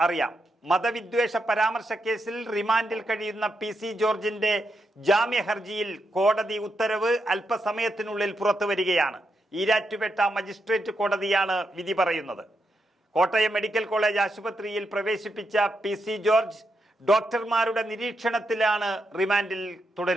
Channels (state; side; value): normal; both; correlation 0.83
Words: അറിയാം. മതവിദ്വേഷ പരാമർശ കേസിൽ റിമാൻഡിൽ കഴിയുന്ന PC ജോർജിന്റെ ജാമ്യ ഹർജിയിൽ കോടതി ഉത്തരവ് അല്പസമയത്തിനുള്ളിൽ പുറത്തുവരികയാണ്. ഈരാറ്റുപേട്ട മജിസ്ട്രേറ്റ് കോടതിയാണ് വിധി പറയുന്നത്. കോട്ടയം മെഡിക്കൽ കോളേജ് ആശുപത്രിയിൽ പ്രവേശിപ്പിച്ച PC ജോർജ് ഡോക്ടർമാരുടെ നിരീക്ഷണത്തിലാണ് റിമാൻഡിൽ